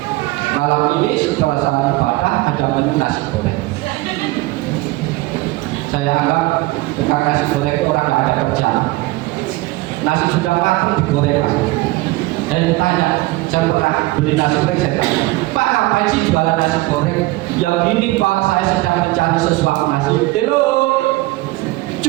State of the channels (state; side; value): quieter; left; 20.2 dB